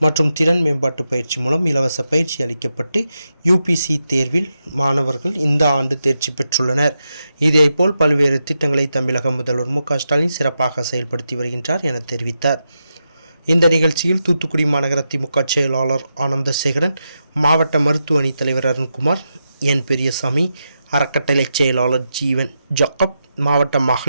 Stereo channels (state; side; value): inverted; both; correlation -0.87